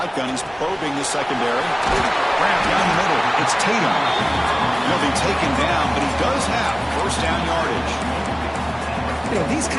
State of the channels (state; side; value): identical; both; correlation 1.00